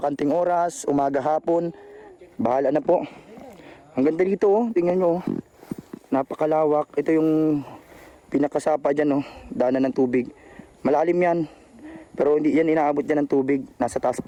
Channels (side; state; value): both; identical; correlation 1.00